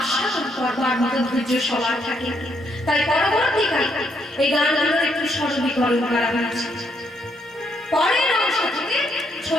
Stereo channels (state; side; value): normal; both; correlation 0.74